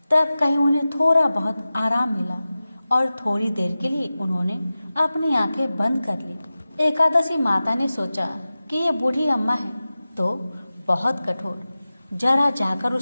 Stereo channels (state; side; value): inverted; both; correlation -0.95